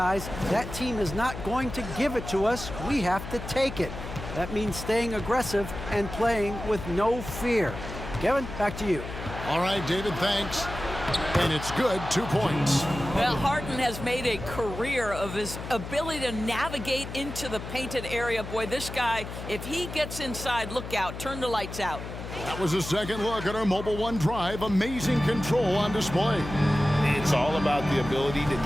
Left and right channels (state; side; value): noise; left; hum, 9 dB below the sound